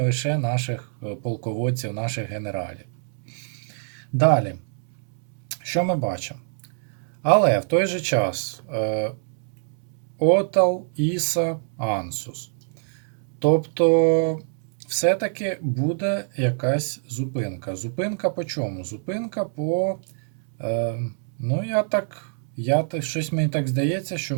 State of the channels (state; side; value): silent; left; digital silence